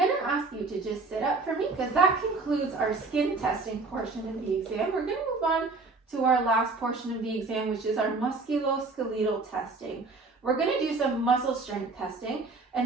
to ask you to just sit up for me because that concludes our skin testing portion of the exam. We're going to move on to our last portion of the exam, which is our musculoskeletal testing. We're going to do some muscle strength testing,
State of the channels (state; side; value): quieter; left; 3.8 dB